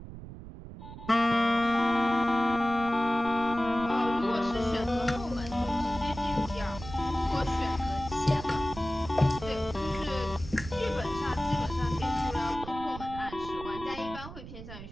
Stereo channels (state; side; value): noise; right; rumble, 12 dB below the sound